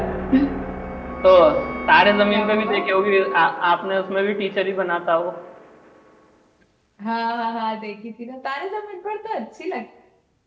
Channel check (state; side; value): identical; both; correlation 1.00